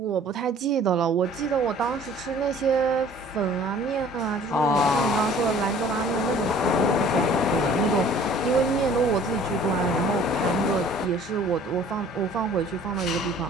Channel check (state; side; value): normal; both; correlation 0.51